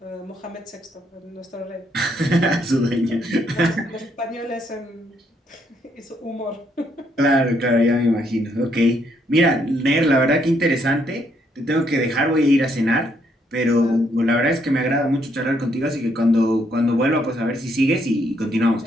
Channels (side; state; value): both; normal; correlation 0.72